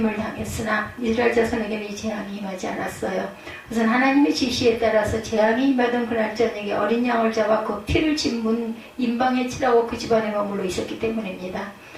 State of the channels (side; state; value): both; identical; correlation 1.00